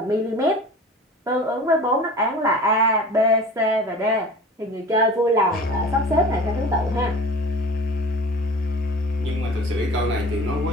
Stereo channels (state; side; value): normal; both; correlation 0.40